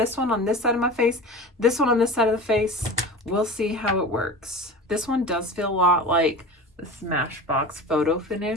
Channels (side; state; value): both; normal; correlation 0.33